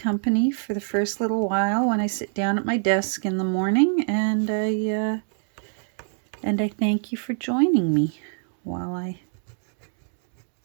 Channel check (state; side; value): silent; left; digital silence